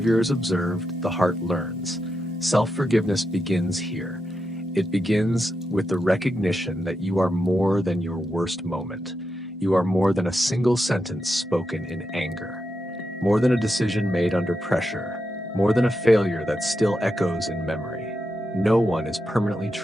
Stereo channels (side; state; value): both; normal; correlation 0.86